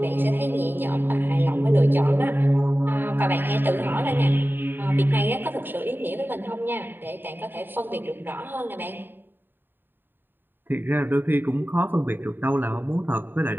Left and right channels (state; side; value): late; left; 0.095 ms